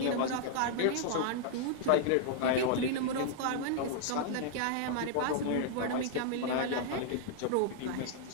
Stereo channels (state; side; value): different; both; correlation -0.01